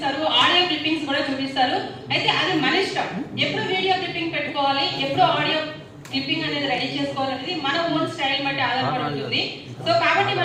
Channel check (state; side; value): identical; both; correlation 1.00